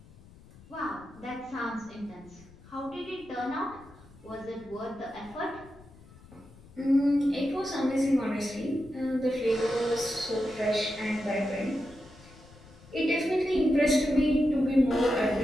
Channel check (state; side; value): noise; left; rumble, 22 dB below the sound